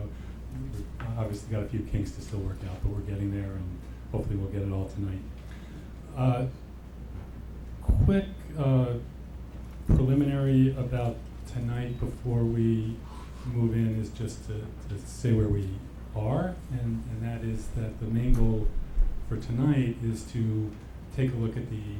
we've obviously got a few kinks to still work out, but we're getting there, and hopefully we'll get it all tonight. Quick preliminary about tonight before we move in is just to say where we are, and that is that the main goal for tonight is to take a look at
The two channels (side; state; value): both; identical; correlation 1.00